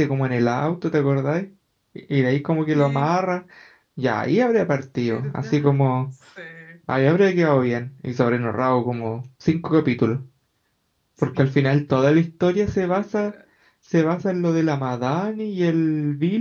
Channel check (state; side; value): identical; both; correlation 1.00